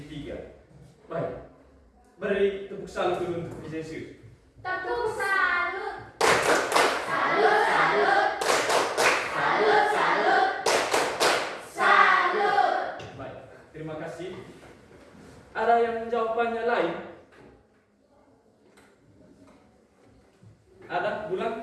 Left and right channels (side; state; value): both; identical; correlation 1.00